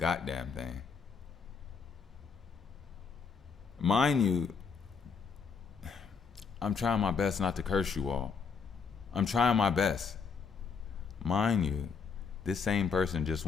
thing. Mind you, I'm trying my best not to curse you all. I'm trying my best. Mind you, this same person just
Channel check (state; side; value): quieter; right; 5.6 dB